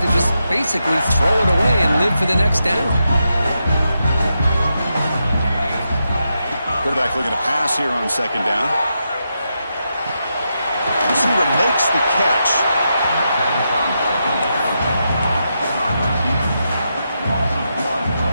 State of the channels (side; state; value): both; inverted; correlation -0.85